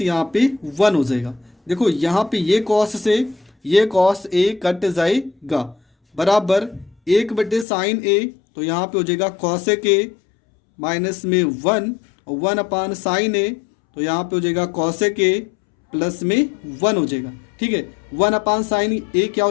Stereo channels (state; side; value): drops out; right; at 7.7 s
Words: यहाँ पे 1 हो जाएगा। देखो यहाँ पे ये कॉस से ये कॉस ए कट जाएगा, बराबर 1 बटे साइन ए, तो यहाँ पे हो जाएगा कॉसेक ए माइनस में 1 और 1 अपान साइन ए, तो यहाँ पे हो जाएगा कॉसेक ए प्लस में 1 हो जाएगा, ठीक है। 1 अपान साइन ए क्या